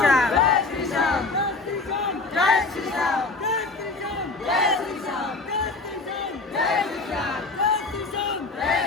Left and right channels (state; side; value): quieter; right; 3.6 dB